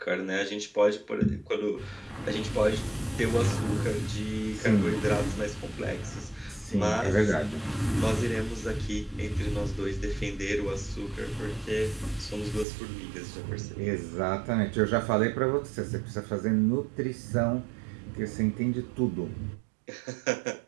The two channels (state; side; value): drops out; left; at 12.7 s